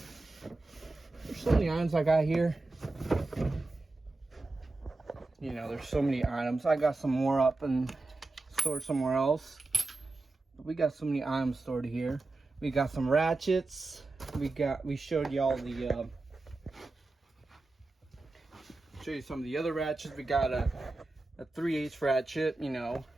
There's so many items I got here. You know, there's so many items. I got some more up and stored somewhere else. But we got so many items stored here. We got some ratchets. We showed y'all the show you some of the other ratchets. We got a 3/8 ratchet, you know.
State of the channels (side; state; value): left; quieter; 3.2 dB